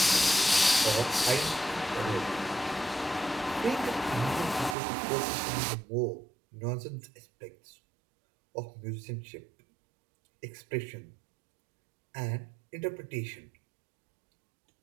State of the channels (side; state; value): left; drops out; at 4.8 s